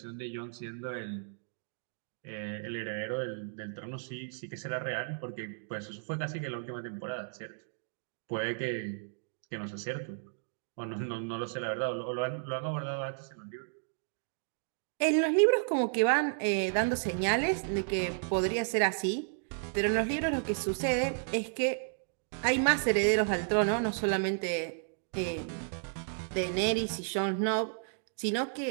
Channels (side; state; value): left; silent; digital silence